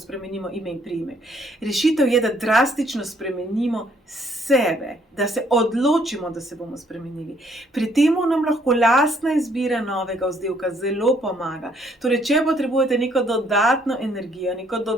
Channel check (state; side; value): normal; both; correlation 0.66